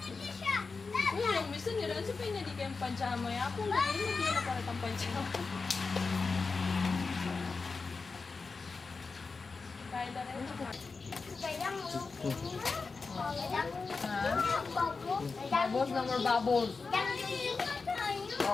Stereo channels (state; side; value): quieter; right; 4.4 dB